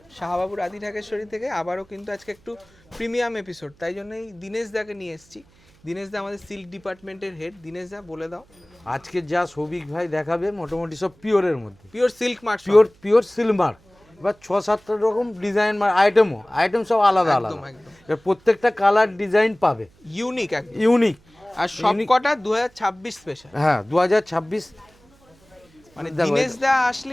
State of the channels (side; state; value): right; noise; hum, 30 dB below the sound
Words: শাহবাবুর আদি ঢাকেশ্বরী থেকে আবারও কিন্তু আজকে একটু প্রিমিয়াম এপিসোড, তাই জন্যই দীনেশ দাকে নিয়ে এসেছি। দীনেশ দা আমাদের সিল্ক ডিপার্টমেন্টের হেড। দীনেশ দা, বলে দাও। আজকে যা সৌভিক ভাই দেখাবে মোটামুটি সব পিওরের মধ্যে, pure silk mark, pure silk mark. এবার 6-7টা রকম ডিজাইন আইটেম সব আলাদা আলাদা। এবার প্রত্যেকটা কালার ডিজাইন পাবে ইউনিক, একদম ইউনিক। আর সবকটা 2026 স্পেশাল। হ্যাঁ, 2026। মানে দীনেশ দা